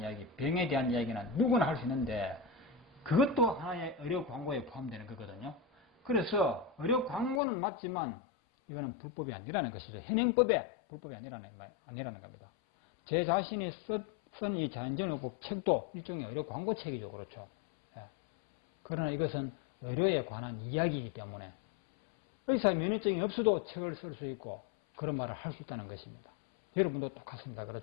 병에 대한 이야기는 누구나 할 수 있는데 그것도 하나의 의료 광고에 포함되는 거거든요. 그래서 의료 광고는 맞지만 이거는 불법이 아니라는 것이죠. 현행법에 불법이 아니라는 겁니다. 제 자신이 쓴 이 자연정의법 책도 일종의 의료 광고 책이죠. 그렇죠. 예. 그러나 이것은 의료에 관한 이야기이기 때문에 의사 면허증이 없어도 책을 쓸 수 있고 그런 말을 할 수 있다는 것입니다. 여러분도 똑같습니다.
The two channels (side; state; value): right; drops out; at 7.4 s